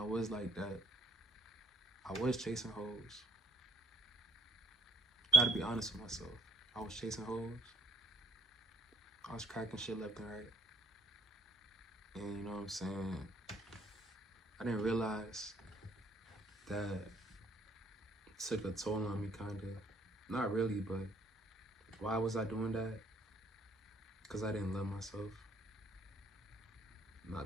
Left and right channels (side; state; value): both; normal; correlation 0.63